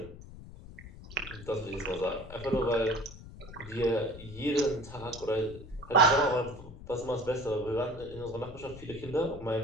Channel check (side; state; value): left; noise; rumble, 15 dB below the sound